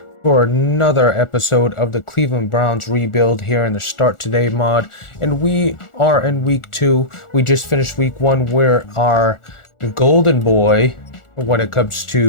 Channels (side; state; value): right; late; 1.4 ms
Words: for another episode of the Cleveland Browns rebuild here in the Start Today mod. And we are in week 2. We just finished week 1 where our golden boy, when it comes